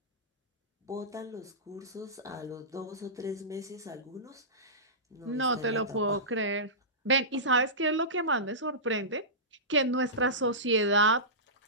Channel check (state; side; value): normal; both; correlation -0.20